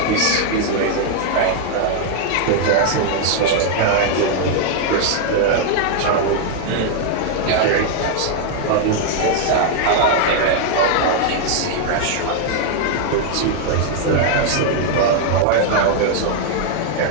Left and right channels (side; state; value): both; different; correlation 0.00